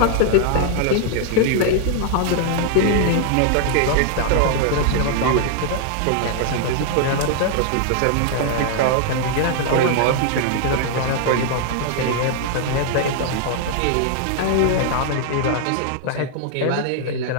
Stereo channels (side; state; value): both; different; correlation 0.00